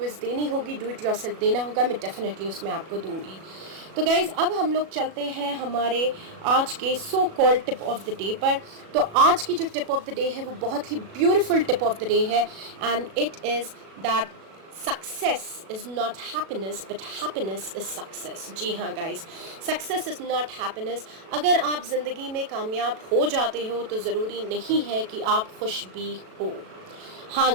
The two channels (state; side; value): late; left; 37 ms